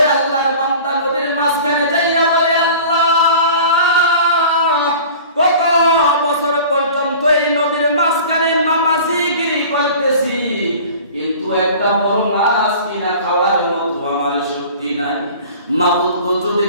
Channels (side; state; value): both; inverted; correlation -0.42